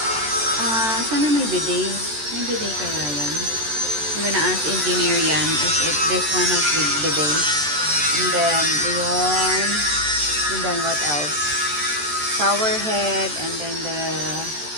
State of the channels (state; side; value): late; left; 14 ms